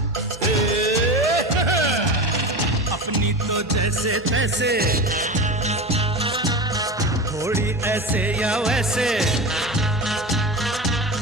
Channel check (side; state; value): both; normal; correlation 0.25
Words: जैसे तैसे थोड़ी ऐसे या वैसे,